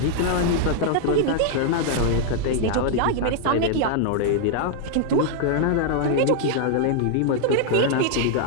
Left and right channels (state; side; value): different; both; correlation 0.00